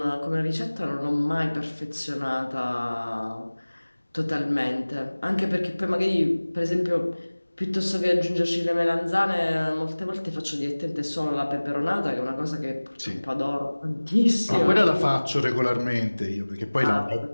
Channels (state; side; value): inverted; both; correlation -1.00